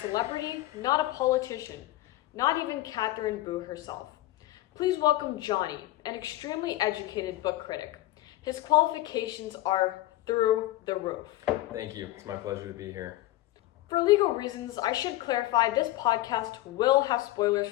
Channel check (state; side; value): quieter; right; 16.7 dB